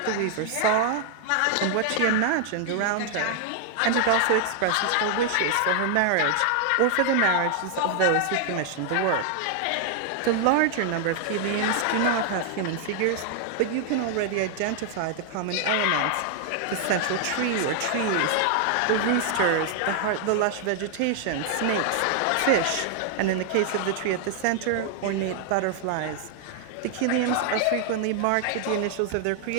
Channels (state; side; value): different; both; correlation 0.00